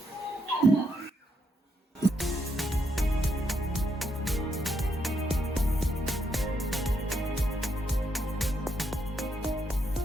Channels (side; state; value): both; normal; correlation 0.78